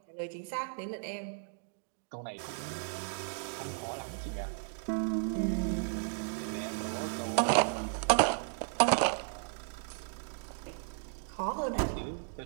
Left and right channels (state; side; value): silent; left; 55 dB below the other